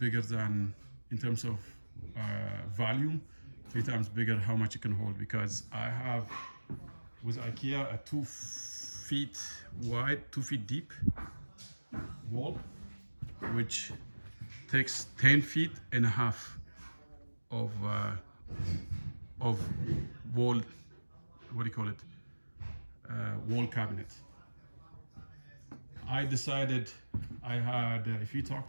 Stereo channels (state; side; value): inverted; both; correlation -1.00